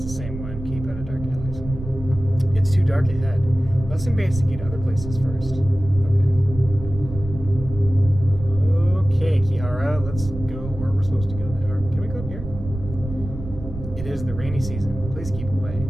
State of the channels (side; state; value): right; noise; rumble, 10 dB below the sound